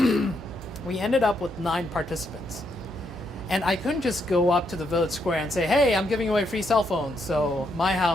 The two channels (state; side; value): normal; both; correlation 0.77